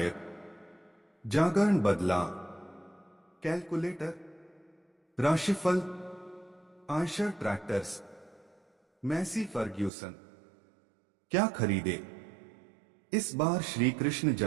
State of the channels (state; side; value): drops out; left; at 9.9 s